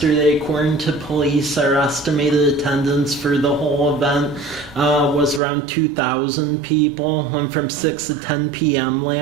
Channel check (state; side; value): drops out; left; at 5.4 s